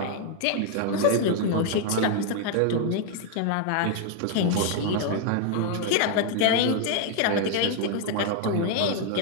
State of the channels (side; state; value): both; different; correlation 0.00